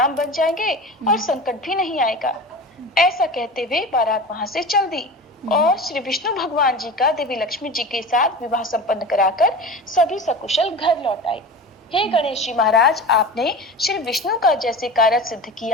बन जाएंगे और संकट भी नहीं आएगा। ऐसा कहते हुए बारात वहां से चल दी और श्री विष्णु भगवान जी का देवी लक्ष्मी जी के साथ विवाह संपन्न कराकर सभी सकुशल घर लौट आए। हे गणेश जी महाराज, आपने श्री विष्णु का जैसे कार्य सिद्ध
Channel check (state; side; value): normal; both; correlation 0.32